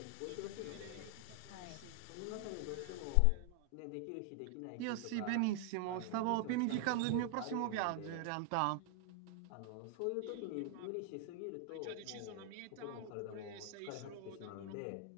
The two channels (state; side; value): different; both; correlation 0.00